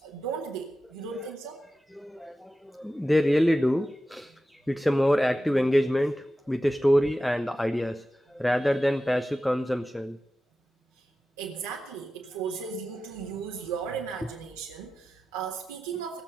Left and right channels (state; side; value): normal; both; correlation 0.93